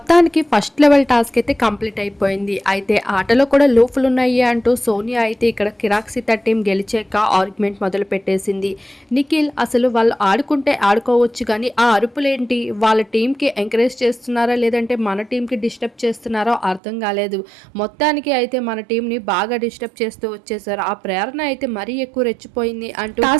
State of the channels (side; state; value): left; drops out; at 16.8 s